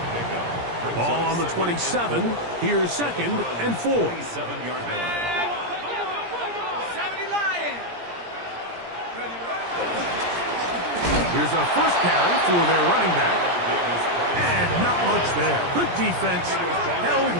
Ball on the 27. Here's 2nd and 4. Here's a first carry for their running back. And not much there. Good defense. Held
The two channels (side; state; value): left; late; 17 ms